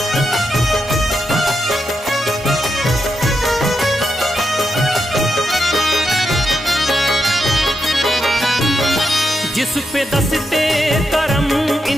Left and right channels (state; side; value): normal; both; correlation 0.84